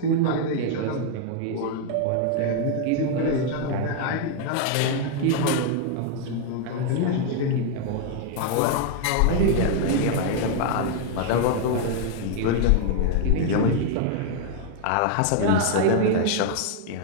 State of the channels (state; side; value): different; both; correlation 0.00